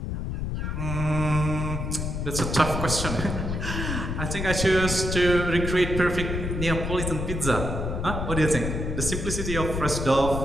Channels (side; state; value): left; noise; rumble, 3 dB below the sound